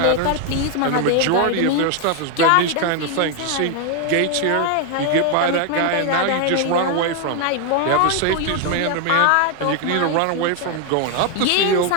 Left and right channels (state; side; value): different; both; correlation 0.01